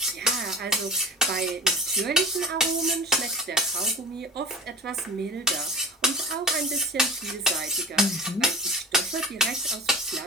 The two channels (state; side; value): normal; both; correlation 0.36